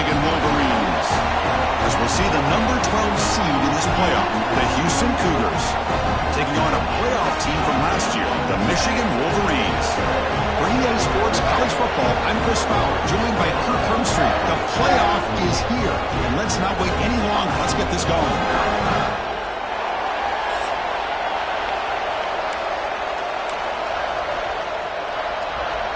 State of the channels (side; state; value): both; identical; correlation 1.00